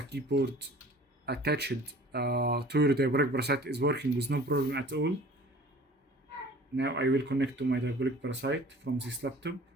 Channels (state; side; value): normal; both; correlation 0.46